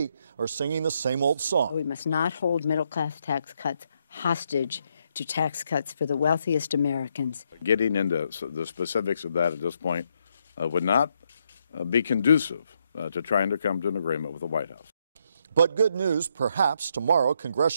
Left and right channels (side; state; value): both; inverted; correlation -0.77